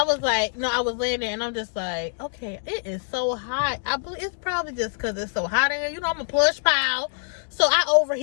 was like, I was laying there and I'm just like, okay, it is so hot. I believe it's probably just because it's so hot in here. You know, I'm a plush pile, so I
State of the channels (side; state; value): right; silent; digital silence